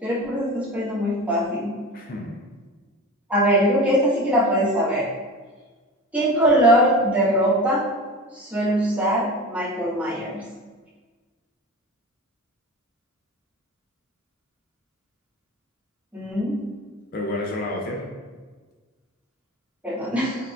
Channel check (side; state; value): both; normal; correlation 0.31